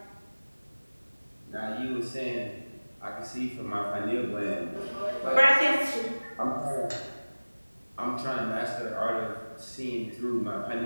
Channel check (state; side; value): inverted; both; correlation -1.00